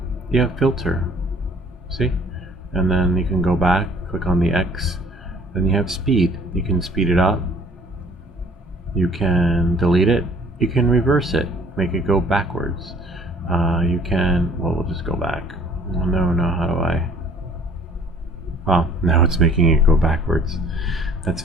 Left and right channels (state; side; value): normal; both; correlation 0.55